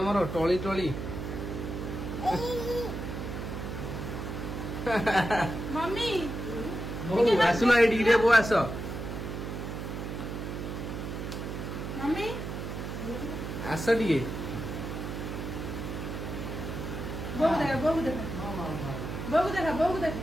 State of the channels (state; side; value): noise; right; hum, 6 dB below the sound